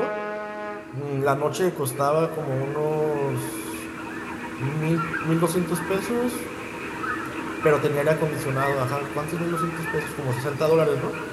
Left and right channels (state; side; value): identical; both; correlation 1.00